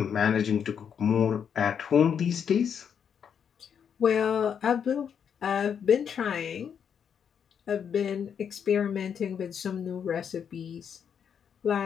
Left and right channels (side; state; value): right; quieter; 7.7 dB